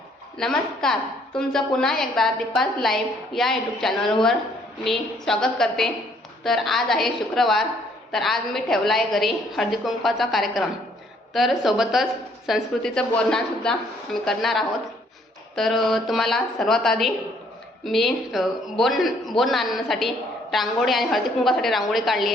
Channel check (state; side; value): normal; both; correlation 0.64